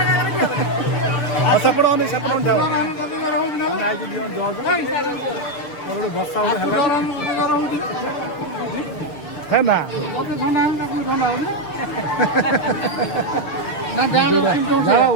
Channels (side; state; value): right; late; 6.7 ms